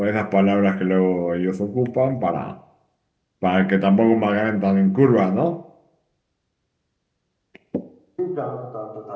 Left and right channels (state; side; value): identical; both; correlation 1.00